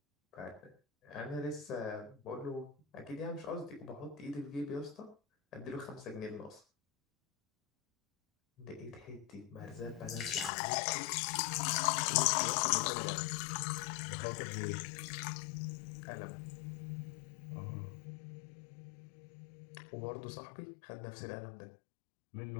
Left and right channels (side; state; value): right; drops out; at 10.5 s